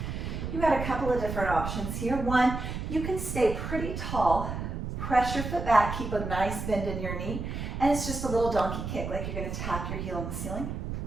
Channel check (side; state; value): right; noise; rumble, 5 dB below the sound